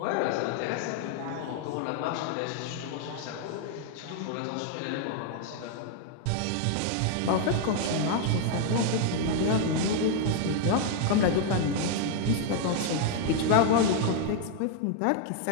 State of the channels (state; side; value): different; both; correlation 0.00